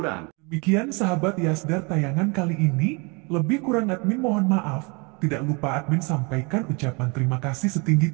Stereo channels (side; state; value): left; quieter; 30.5 dB